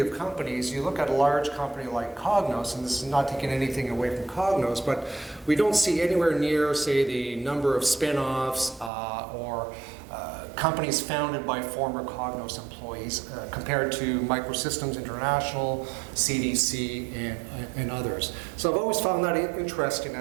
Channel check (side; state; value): left; drops out; at 8.9 s